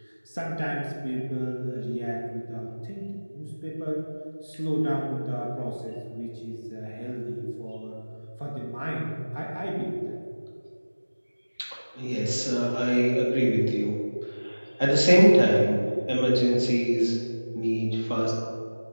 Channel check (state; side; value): inverted; both; correlation -1.00